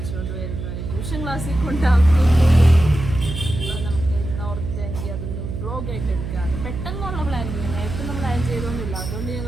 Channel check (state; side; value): noise; right; hum, 6 dB below the sound